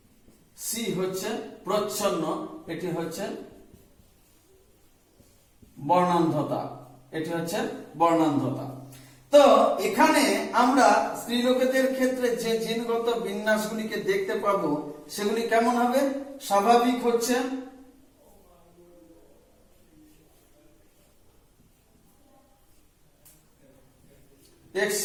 সি হচ্ছে প্রচ্ছন্ন, এটি হচ্ছে বর্ণান্ধতা, এটি হচ্ছে বর্ণান্ধতা। তো এখানে আমরা স্ত্রীলোকেদের ক্ষেত্রে যে জিনগত বিন্যাসগুলিকে দেখতে পাবো সেগুলি কেমন হবে? স্বাভাবিক হচ্ছে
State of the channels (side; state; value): both; identical; correlation 1.00